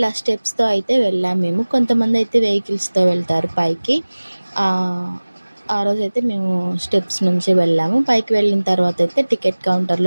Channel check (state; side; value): inverted; both; correlation -1.00